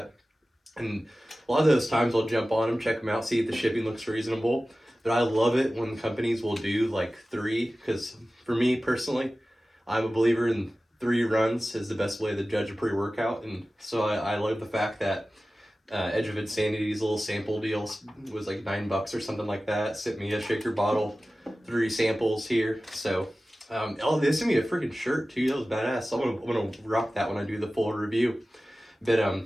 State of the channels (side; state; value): both; normal; correlation 0.96